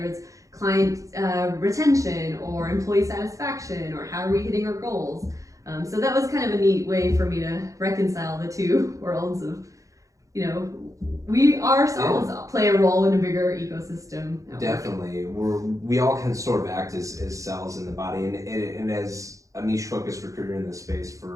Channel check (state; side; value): late; left; 0.16 ms